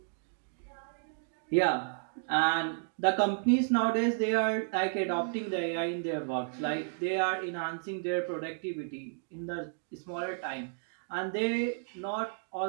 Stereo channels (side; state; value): left; silent; digital silence